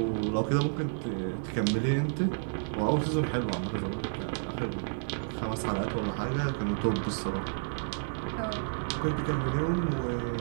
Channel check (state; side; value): silent; left; digital silence